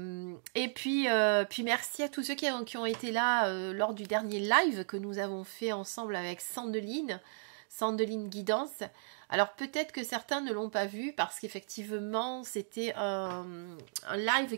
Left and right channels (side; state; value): left; silent; digital silence